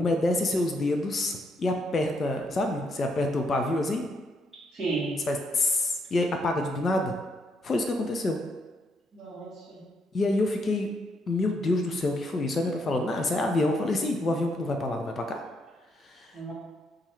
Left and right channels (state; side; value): normal; both; correlation 0.76